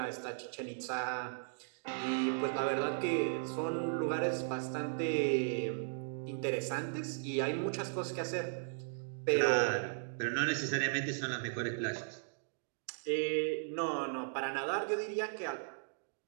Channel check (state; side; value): silent; left; digital silence